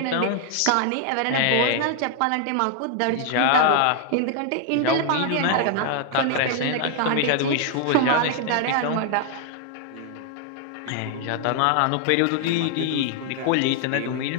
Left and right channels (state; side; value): different; both; correlation 0.00